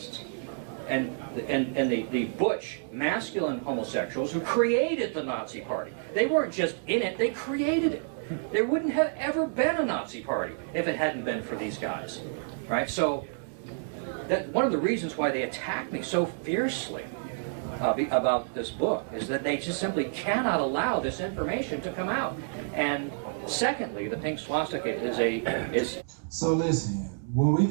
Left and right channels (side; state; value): left; silent; digital silence